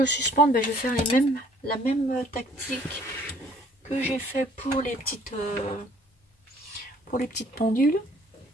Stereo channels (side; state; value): both; normal; correlation 0.58